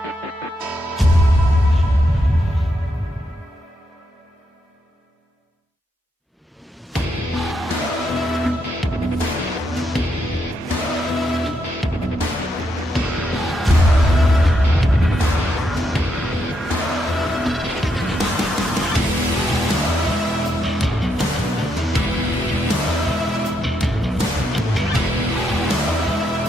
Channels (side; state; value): both; normal; correlation 0.79